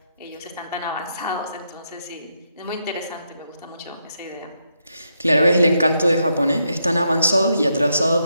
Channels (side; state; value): both; inverted; correlation -0.80